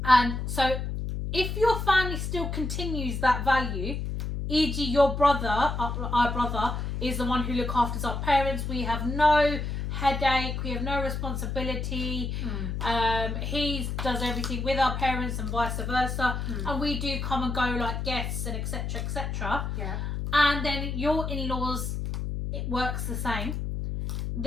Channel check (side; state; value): left; noise; hum, 3 dB below the sound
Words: And so if your family still continues that value, e.g. your brother, our brother, is the one who looks after our parents. We have no headache, we have no responsibility. He does everything with our parents and vice versa. And we do come and go like guests and etc. etc. Yeah. And then your in-laws, it works the same.